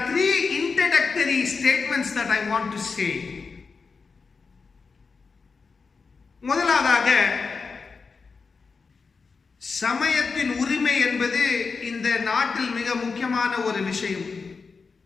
3 introductory statements that I want to say. முதலாவதாக, சமயத்தின் உரிமை என்பது இந்த நாட்டில் மிக முக்கியமான ஒரு விஷயம்.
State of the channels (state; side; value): quieter; right; 4.8 dB